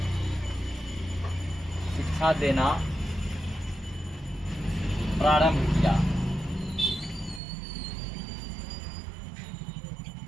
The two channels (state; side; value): drops out; left; at 7.4 s